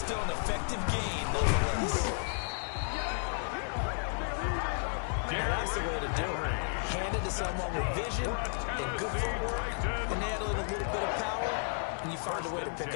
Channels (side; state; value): right; silent; 56 dB below the other